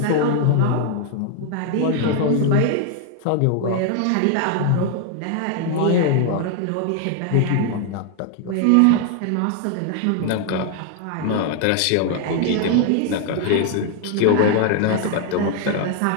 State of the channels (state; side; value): different; both; correlation 0.00